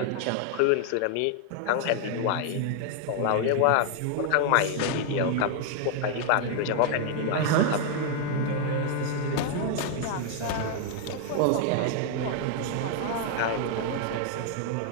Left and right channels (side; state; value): both; different; correlation 0.00